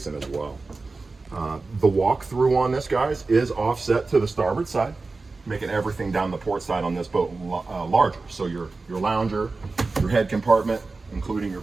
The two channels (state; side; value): quieter; left; 3.8 dB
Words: as well. The walkthrough on this, guys, is offset to the starboard side, making everything down the port side on this boat larger. So your lounger, your head compartment, including your